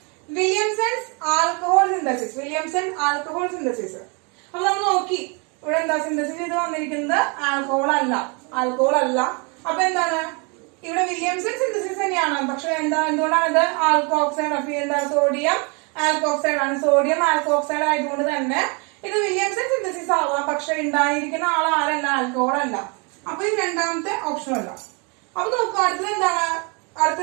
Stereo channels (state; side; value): quieter; left; 32.7 dB